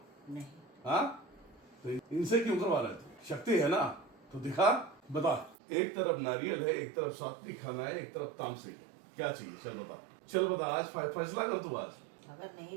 नहीं। हाँ, तो इनसे क्यों करवा रहे तू? शक्ति है ना तो दिखा, बता। एक तरफ नारियल है, एक तरफ सात्विक खाना है, एक तरफ तामसिक है, क्या चाहिए? चल बता, चल बता, आज फैसला कर तू। आज अगर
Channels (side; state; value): left; drops out; at 5.6 s